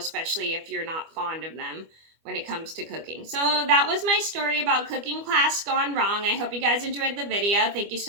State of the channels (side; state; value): left; late; 25 ms